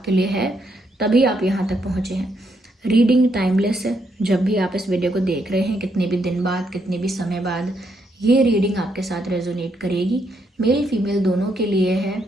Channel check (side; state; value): both; normal; correlation 0.76